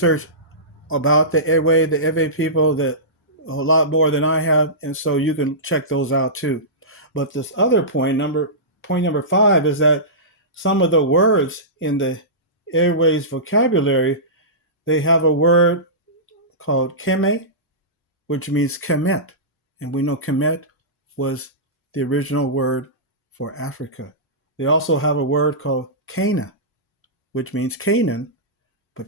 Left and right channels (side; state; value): both; normal; correlation -0.20